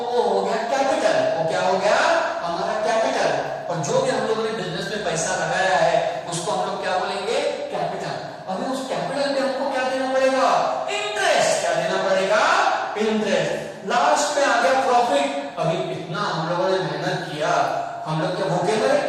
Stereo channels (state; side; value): identical; both; correlation 1.00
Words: वो हो गया कैपिटल. वो क्या हो गया? हमारा कैपिटल. और जो भी हम लोगों ने बिजनेस में पैसा लगाया है उसको हम लोग क्या बोलेंगे? कैपिटल. अभी उस कैपिटल पे हमको क्या देना पड़ेगा? इंटरेस्ट. क्या देना पड़ेगा? इंटरेस्ट. लास्ट में आ गया प्रॉफिट. अभी इतना हम लोगों ने मेहनत किया, हम लोग क्या भूखे